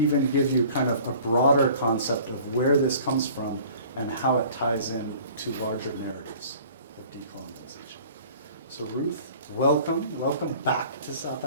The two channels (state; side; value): inverted; both; correlation -0.49